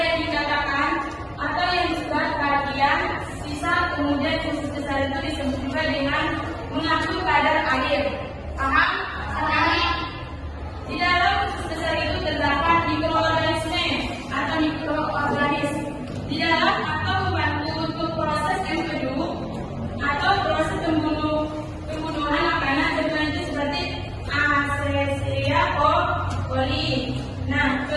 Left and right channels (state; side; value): identical; both; correlation 1.00